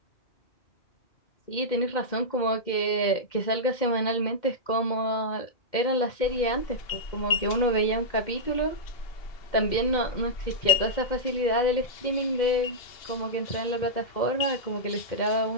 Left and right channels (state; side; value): late; right; 2.1 ms